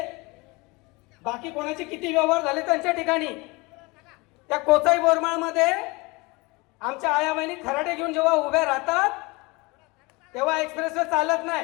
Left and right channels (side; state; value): right; quieter; 25.3 dB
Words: बाकी कोणाचे किती व्यवहार झाले त्यांच्या ठिकाणी. त्या कोचाई बोरमाळ मध्ये आमच्या आया बहिणी खराडे घेऊन जेव्हा उभ्या राहतात तेव्हा एक्सप्रेसवे चालत